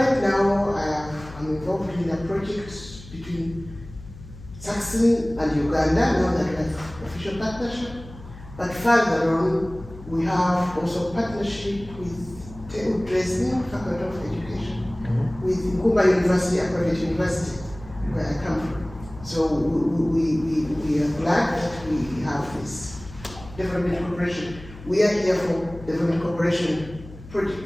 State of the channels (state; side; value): noise; left; hum, 16 dB below the sound